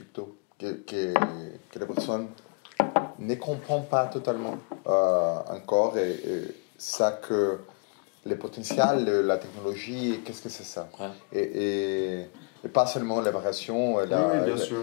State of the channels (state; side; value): quieter; right; 33.0 dB